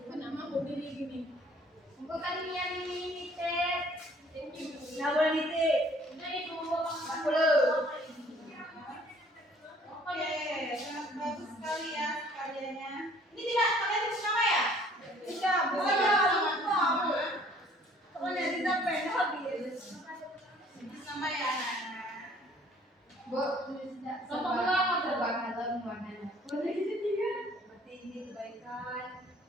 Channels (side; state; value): both; normal; correlation 0.57